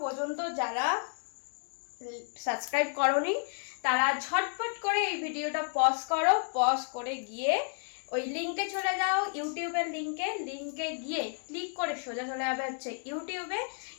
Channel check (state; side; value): silent; right; 56 dB below the other